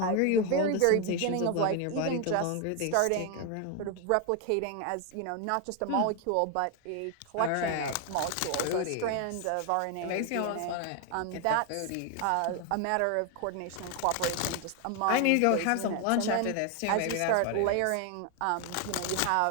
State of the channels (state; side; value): different; both; correlation 0.01